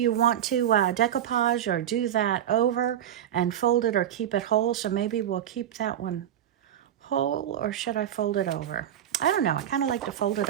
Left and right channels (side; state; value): left; quieter; 10.6 dB